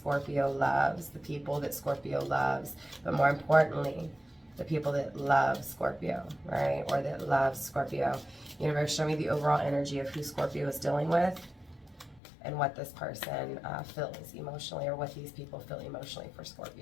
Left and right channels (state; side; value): drops out; right; at 12.2 s